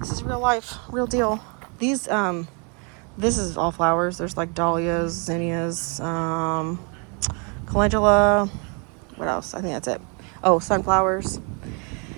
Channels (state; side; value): quieter; left; 35.0 dB